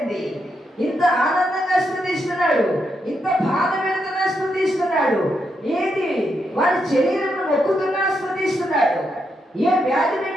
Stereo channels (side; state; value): both; normal; correlation 0.81